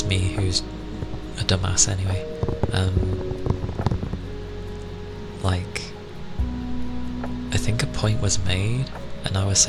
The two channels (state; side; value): identical; both; correlation 1.00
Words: me, who's a dumbass anyway. Like, I think a point was made and I was